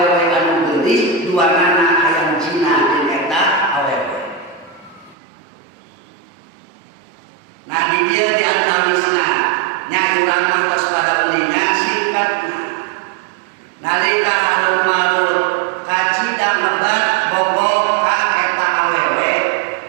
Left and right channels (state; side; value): drops out; left; at 5.2 s